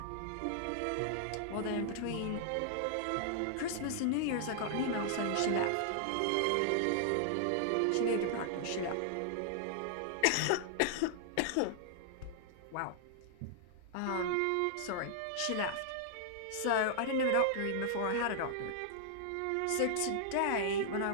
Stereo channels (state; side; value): different; both; correlation -0.01